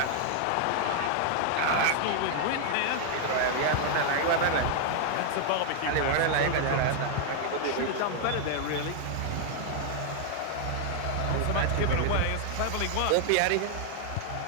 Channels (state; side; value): different; both; correlation 0.00